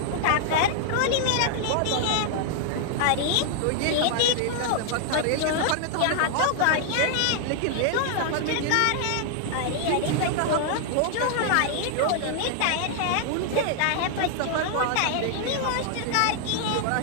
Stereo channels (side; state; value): both; different; correlation 0.00